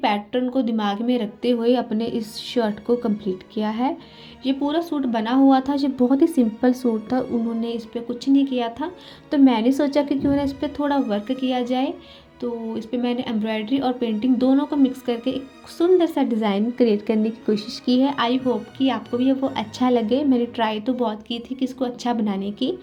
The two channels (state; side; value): identical; both; correlation 1.00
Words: को दिमाग में रखते हुए अपने इस शर्ट को कंप्लीट किया है। ये पूरा सूट बना हुआ था, ये बहुत ही सिंपल सूट था, उन्होंने इस पर कुछ नहीं किया था। तो मैंने सोचा कि क्यों ना इस पर थोड़ा वर्क किया जाए। तो इस पर मैंने एम्ब्रॉयडरी और पेंटिंग दोनों को मिक्स करके एक सुंदर सा डिज़ाइन क्रिएट करने की कोशिश की है। आई होप कि आपको भी वो अच्छा लगे। मैंने ट्राई तो बहुत की थी कि इसको अच्छा बनाने की,